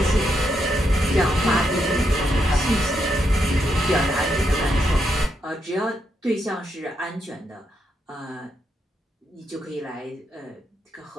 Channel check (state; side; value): normal; both; correlation 0.81